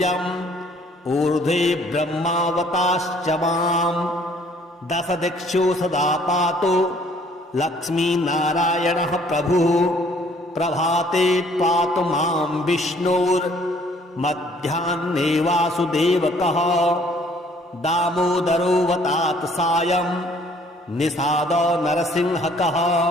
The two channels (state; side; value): normal; both; correlation 0.59